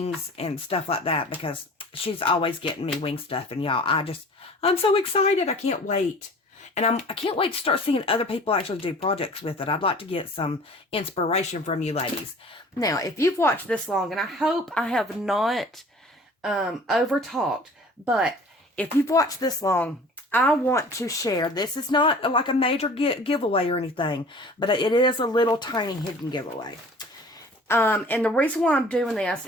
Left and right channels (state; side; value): normal; both; correlation 0.46